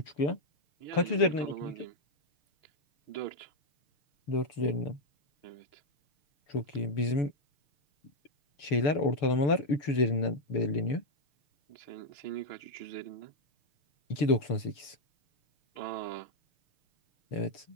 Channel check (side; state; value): right; late; 7.0 ms